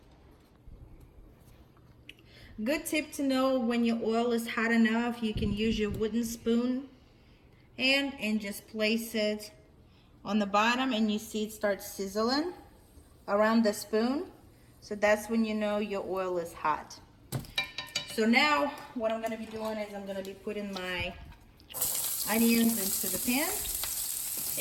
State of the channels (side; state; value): both; identical; correlation 1.00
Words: Good tip to know: when your oil is hot enough, you can use your wooden spoon and just place it on the bottom, and you see it starts sizzling around the spoon. So that's when you know your oil is hot. So now what I'm gonna be doing is I'm gonna be putting my onions into the pan,